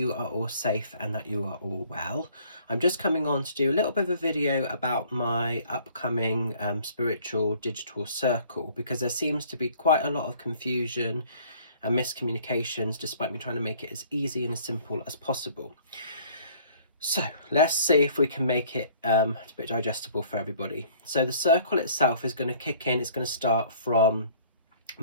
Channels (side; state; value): both; inverted; correlation -0.55